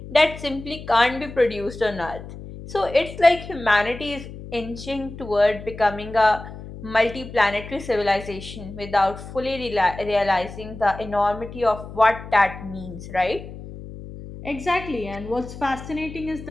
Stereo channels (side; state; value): left; noise; hum, 13 dB below the sound